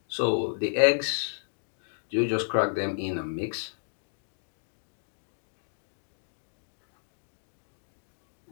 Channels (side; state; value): right; silent; digital silence